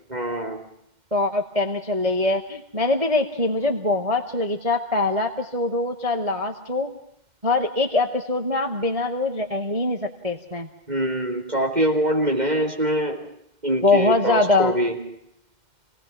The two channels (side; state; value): left; late; 2.1 ms